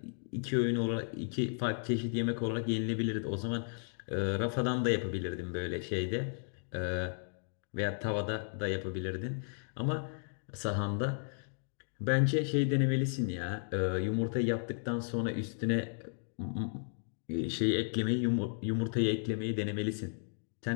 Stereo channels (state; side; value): silent; right; digital silence